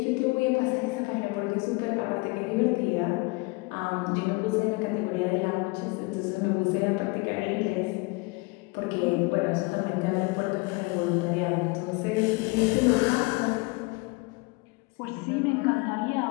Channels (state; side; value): quieter; right; 26.6 dB